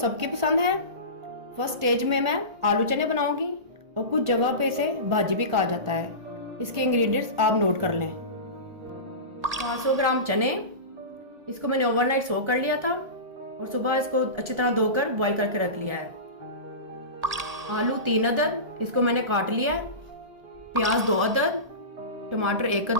पसंद है। फर्स्ट स्टेज में मैं आलू चने बनाऊंगी और कुछ जगह पे इसे भाजी भी कहा जाता है। इसके इंग्रेडिएंट्स आप नोट कर लें। 500 ग्राम चने, इसको मैंने ओवरनाइट सोक कर लिया था और सुबह इसको अच्छी तरह धोकर बॉईल करके रख लिया है। आलू 3 अदद, इसको मैंने काट लिया है। प्याज 2 अदद, टमाटर 1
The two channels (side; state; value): left; late; 1.8 ms